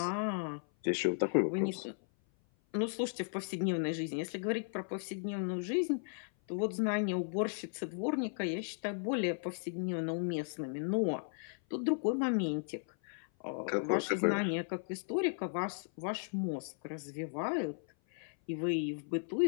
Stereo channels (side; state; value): right; silent; 54 dB below the other